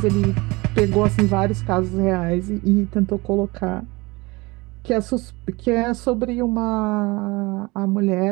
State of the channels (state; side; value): quieter; left; 23.9 dB